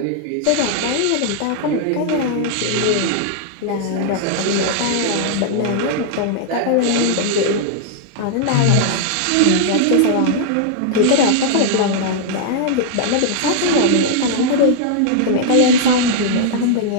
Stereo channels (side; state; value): both; different; correlation -0.01